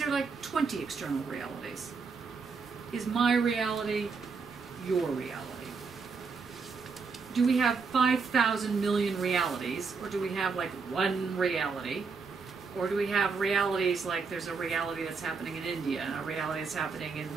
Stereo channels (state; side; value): quieter; left; 5.0 dB